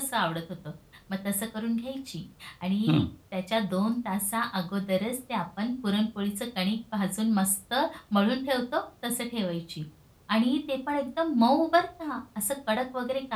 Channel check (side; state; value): both; identical; correlation 1.00